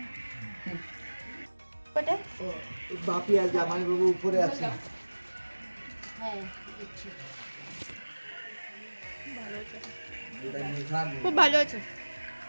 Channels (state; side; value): inverted; both; correlation -1.00